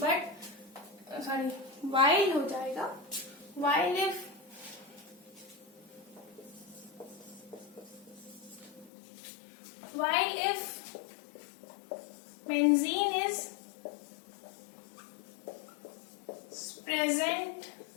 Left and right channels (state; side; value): drops out; right; at 8.9 s